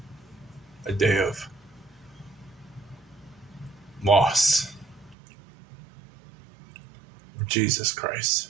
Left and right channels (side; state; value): left; drops out; at 5.2 s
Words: a day of loss of Jesus Christ.